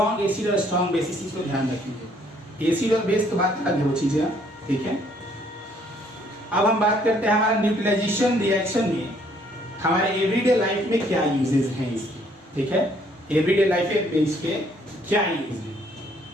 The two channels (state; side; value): normal; both; correlation 0.64